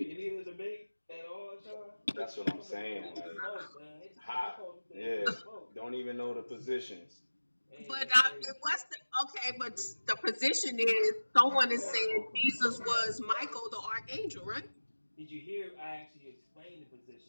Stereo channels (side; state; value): both; inverted; correlation -1.00